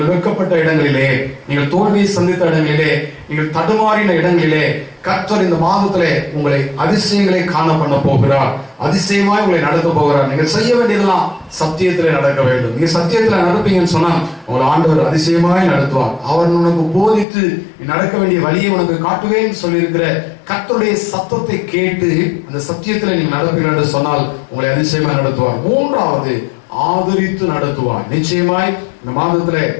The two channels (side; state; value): right; drops out; at 17.2 s